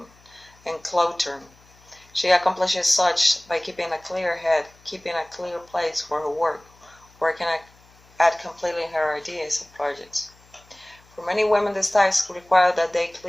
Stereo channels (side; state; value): left; noise; hum, 29 dB below the sound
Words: enclothed. She accomplishes such by keeping a clear head, keeping a clear place for her work, working at completing her ideas and projects. For many women, this task requires that they